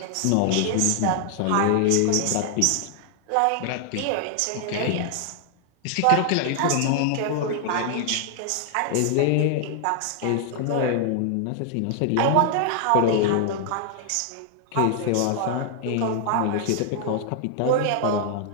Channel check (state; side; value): different; both; correlation 0.00